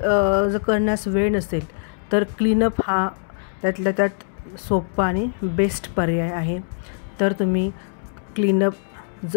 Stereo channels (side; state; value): right; silent; digital silence